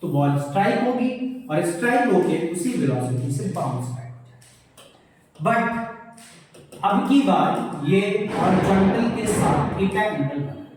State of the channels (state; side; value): identical; both; correlation 1.00